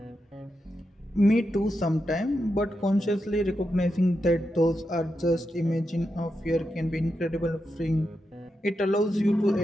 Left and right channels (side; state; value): both; normal; correlation 0.87